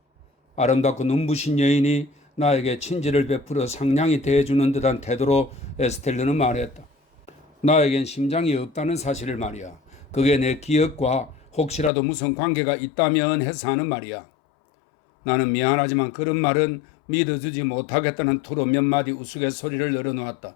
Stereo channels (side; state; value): right; drops out; at 11.9 s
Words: 아름답고 눈부신 여인이 나에게 친절을 베풀어 상냥히 대해주는 듯한 태도로 에스텔레는 말했다. 나에겐 심장이 없다는 사실을 말이야. 그게 내 기억과 혹시라도 무슨 관계가 있다면 해서 하는 말이야. 나는 미안하지만 그런 말은 믿어주지 못하겠다는 투로 몇 마디 우스갯소리를 늘어놓았다.